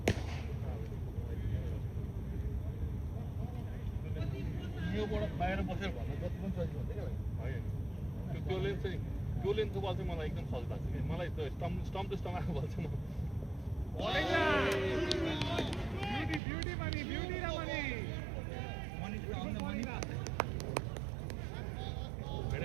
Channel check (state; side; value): drops out; left; at 16.4 s